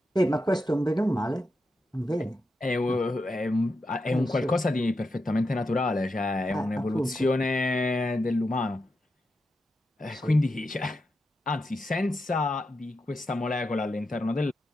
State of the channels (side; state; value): both; normal; correlation 0.87